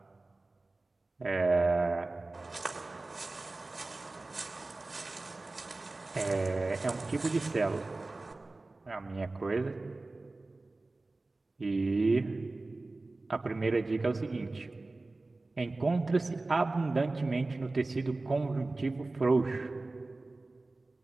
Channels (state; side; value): quieter; left; 3.2 dB